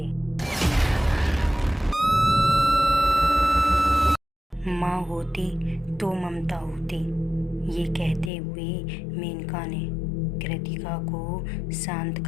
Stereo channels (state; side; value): drops out; right; at 8.3 s